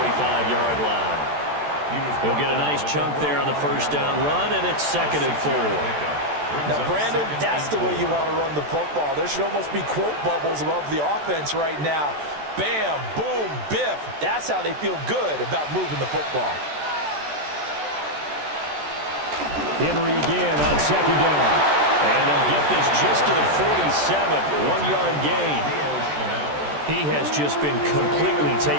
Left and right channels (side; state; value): left; late; 14 ms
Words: line. He'll get a nice chunk there on the first down run, and it's 2nd and 4. Now, Brandon, that's the way you want to run the football. There should almost be quote bubbles above the offense right now. Bam, boom, biff. That's how they feel good about moving the football. Henry again on 2nd down. And they'll get this just to the 47, 1-yard gain. He has just been completely